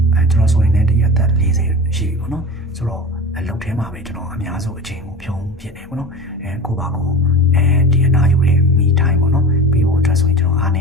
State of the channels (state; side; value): normal; both; correlation 0.32